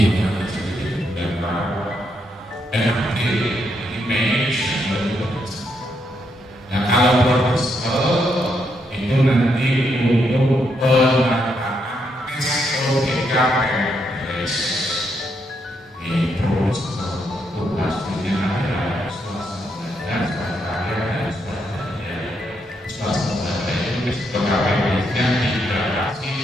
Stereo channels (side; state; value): both; normal; correlation 0.78